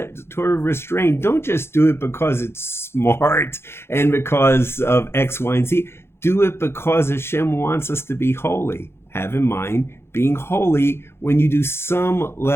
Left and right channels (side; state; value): right; late; 0.12 ms